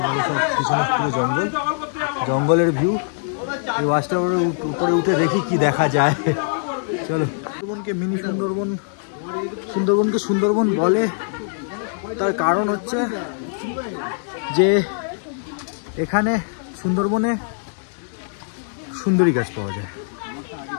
পিছনে পুরো জঙ্গলের ভিউ। এই ওয়াচ টাওয়ারের উপরে উঠে দেখি কি দেখা যায়। চলো। সুন্দরবনকে মিনি সুন্দরবনকে সুন্দরবন বলে, তার কারণ হচ্ছে যে এখানে সুন্দরবনে সুন্দরী গাছ পাওয়া যায়।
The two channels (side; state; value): right; silent; digital silence